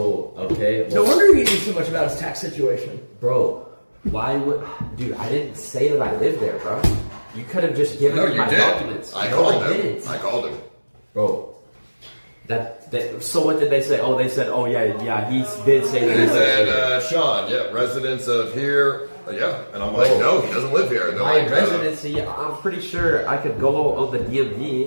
okay. No wonder he knew so much about his tax situation. Bro, why would... Dude, I didn't say that I lived there, bro. You could have just given me my documents. I No, called I him. didn't. I called him. Bro. So what did they say? Oh, they said, oh yeah, he did say that. He said, Sean, yeah, residence of here. Yeah. And I'm like, no, he doesn't live here. And they're My like, residency, I'm pretty sure I could go on the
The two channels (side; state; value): both; inverted; correlation -1.00